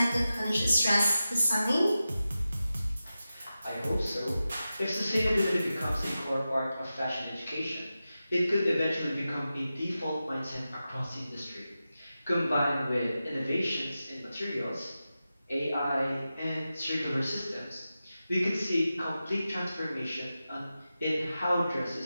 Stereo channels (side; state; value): both; inverted; correlation -0.93